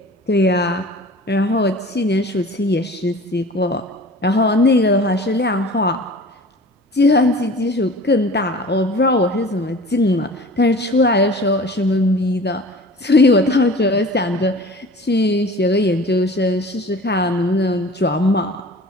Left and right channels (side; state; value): both; normal; correlation 0.42